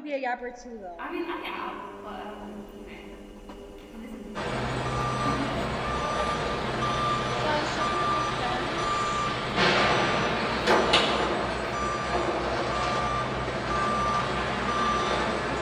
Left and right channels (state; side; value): identical; both; correlation 1.00